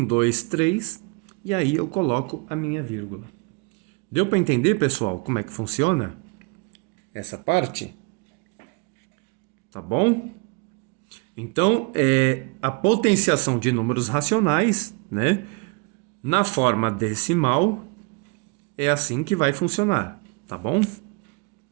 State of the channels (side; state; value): left; quieter; 30.1 dB